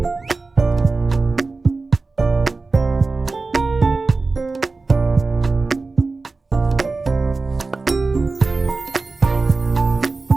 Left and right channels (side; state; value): left; quieter; 3.8 dB